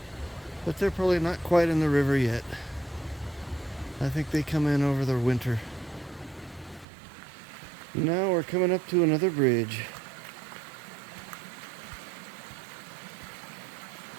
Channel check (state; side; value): drops out; left; at 6.9 s